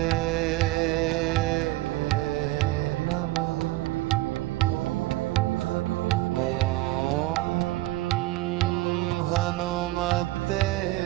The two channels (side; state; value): left; quieter; 18.2 dB